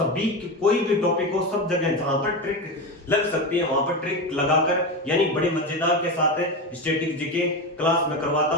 कोई भी टॉपिक हो सब जगह जहां पर ट्रिक लग सकती है वहां पर ट्रिक लगाकर यानी बड़े मजेदार के साथ स्टैटिक जीके क्लास में करवाता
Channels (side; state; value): both; normal; correlation 0.18